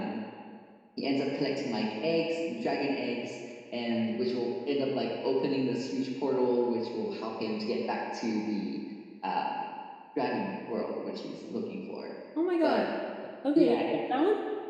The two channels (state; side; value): identical; both; correlation 1.00